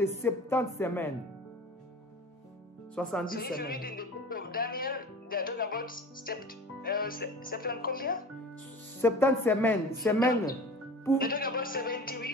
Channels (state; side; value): normal; both; correlation 0.38